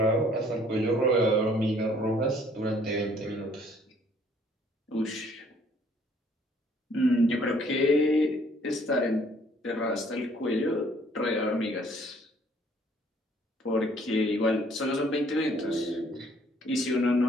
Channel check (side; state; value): both; normal; correlation 0.61